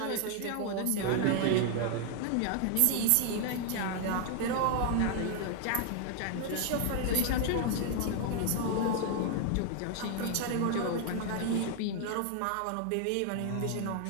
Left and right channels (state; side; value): different; both; correlation 0.00